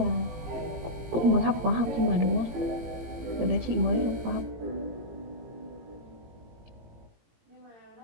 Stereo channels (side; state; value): left; late; 18 ms